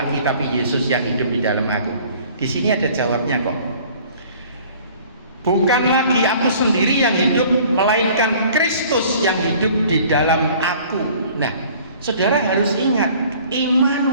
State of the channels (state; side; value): inverted; both; correlation -0.51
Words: tapi Yesus yang hidup di dalam aku. Di sini ada jawabnya kok. Bukan lagi aku sendiri yang hidup, melainkan Kristus yang hidup di dalam aku. Nah, saudara harus ingat,